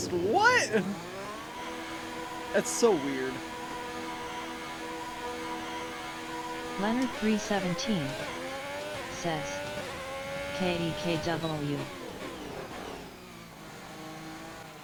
What? That's so weird. Leonard 317 says, KEKW.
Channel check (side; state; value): both; identical; correlation 1.00